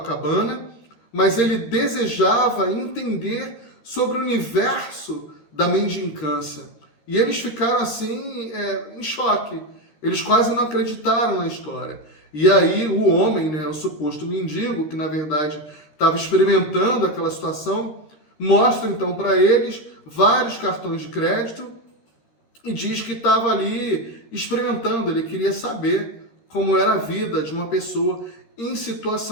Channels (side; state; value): right; late; 13 ms